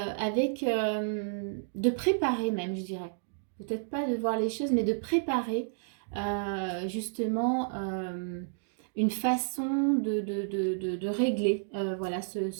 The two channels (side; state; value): left; silent; digital silence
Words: préparer même, je dirais. Peut-être pas de voir les choses, mais de préparer justement une façon de régler voilà,